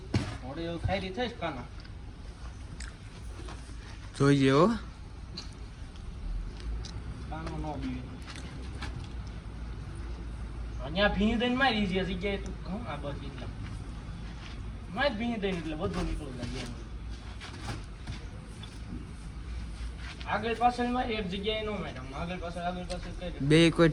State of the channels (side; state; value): both; identical; correlation 1.00